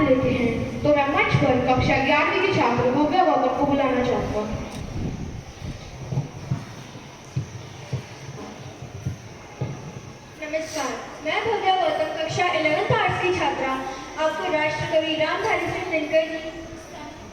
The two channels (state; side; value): identical; both; correlation 1.00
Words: लेते हैं। तो मैं मंच पर कक्षा 11वीं के छात्र भव्या गौतम को बुलाना चाहूंगा। नमस्कार, मैं भव्या गौतम कक्षा 11th आर्ट्स की छात्रा आपको राष्ट्रकवि रामधारी सिंह दिनकर जी